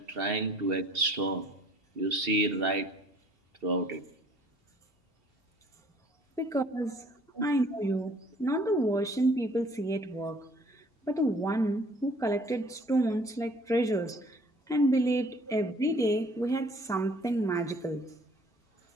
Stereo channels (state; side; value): normal; both; correlation 0.56